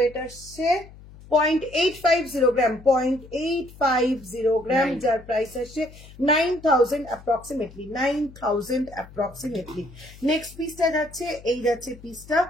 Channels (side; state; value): left; noise; hum, 20 dB below the sound